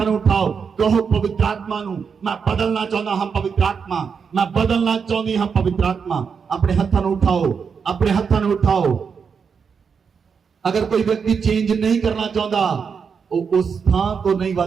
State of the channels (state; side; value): quieter; left; 6.1 dB